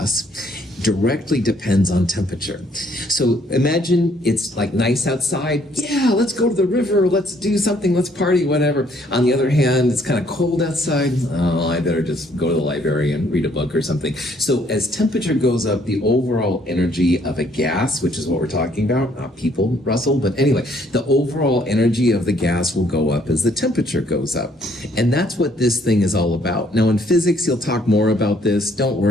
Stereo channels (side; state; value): both; normal; correlation 0.65